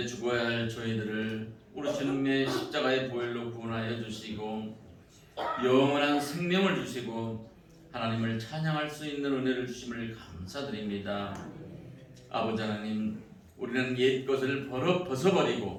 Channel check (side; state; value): both; identical; correlation 1.00